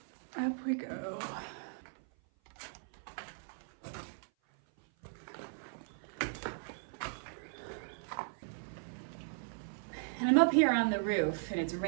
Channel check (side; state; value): left; silent; 53 dB below the other